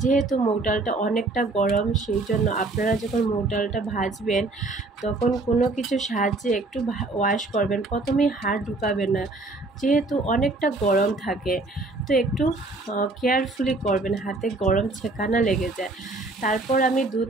যেহেতু মুগ ডালটা অনেকটা গরম, সেই জন্য আপনারা যখন মুগ ডালটা ভাজবেন তখন কোনো কিছু সাহায্যে একটু ওয়াশ করবেন। প্রথমেই হাত ঢুকাবেন না, যেহেতু অনেকটা গরম থাকে। তো একটু কেয়ারফুলি করবেন, হাতে গরম ছেঁকা লেগে যায়। তারপর আমি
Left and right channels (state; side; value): quieter; left; 3.2 dB